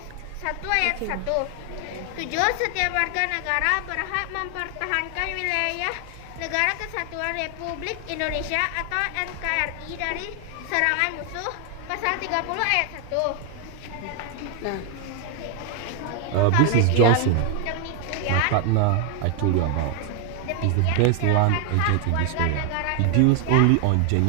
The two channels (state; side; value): different; both; correlation 0.00